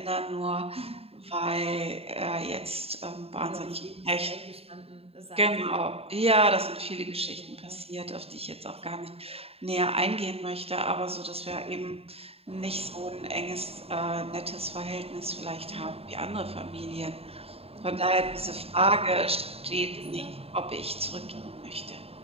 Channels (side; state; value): left; late; 0.29 ms